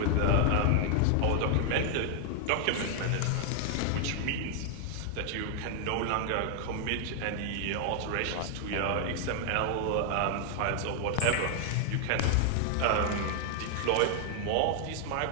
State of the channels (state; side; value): different; both; correlation 0.00